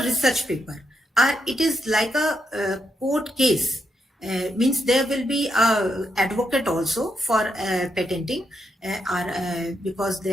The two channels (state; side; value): normal; both; correlation 0.81